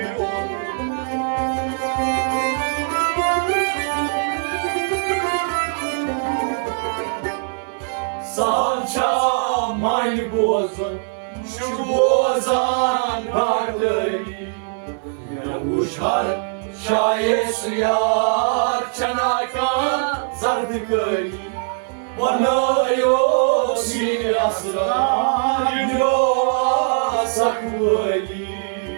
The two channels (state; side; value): silent; left; 65 dB below the other